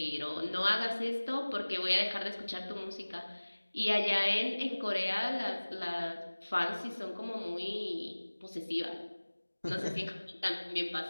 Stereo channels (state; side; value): inverted; both; correlation -1.00